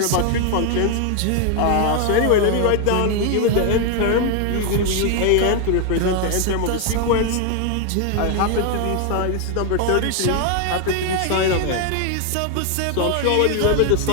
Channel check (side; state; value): both; different; correlation 0.01